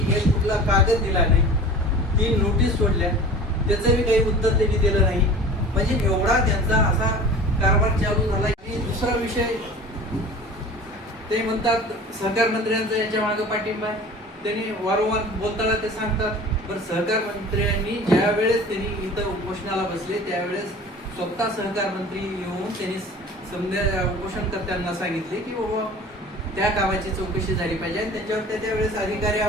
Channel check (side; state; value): both; normal; correlation 0.41